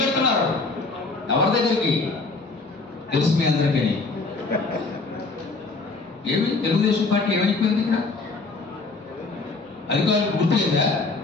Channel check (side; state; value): right; quieter; 3.7 dB